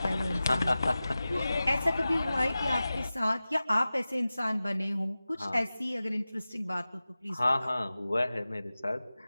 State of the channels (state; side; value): inverted; both; correlation -0.96